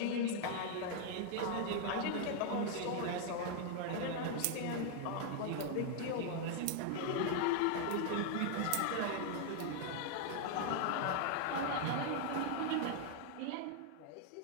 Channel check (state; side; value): different; both; correlation 0.00